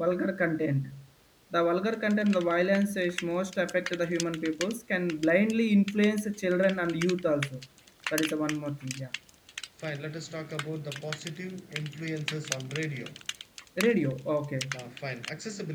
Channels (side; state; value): both; identical; correlation 1.00